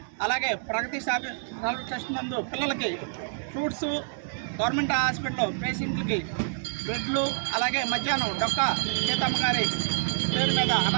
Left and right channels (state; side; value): silent; left; digital silence